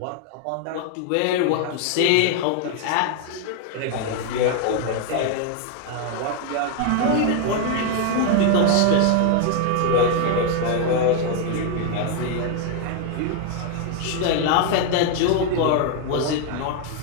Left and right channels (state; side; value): different; both; correlation 0.01